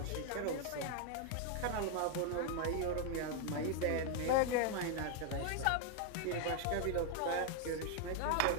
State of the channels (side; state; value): both; different; correlation 0.00